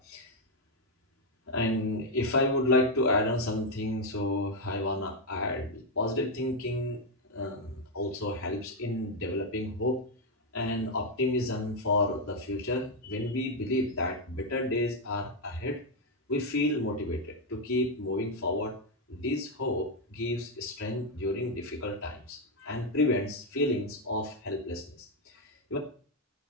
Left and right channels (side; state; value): both; normal; correlation 0.03